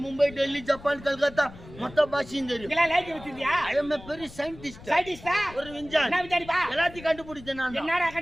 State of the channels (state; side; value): noise; left; rumble, 18 dB below the sound